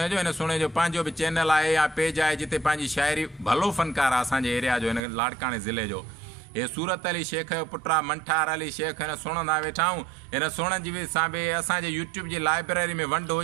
सुहिणे जो पंहिंजो बि चैनल आहे या पेज आहे जिते पंहिंजी शाइरी भलो फ़नकार आहे असांजे एरिया जो, हिन लाड़काणे ज़िले जो। हे सूरत अली शेख जो पुटु आहे मंठार अली शेख, हिन सुणंदा वेठा आहियूं। हिन सुणनि जी बि सां बि असांजे यूट्यूब जी लाइब्रेरी में वंड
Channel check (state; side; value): drops out; left; at 5.0 s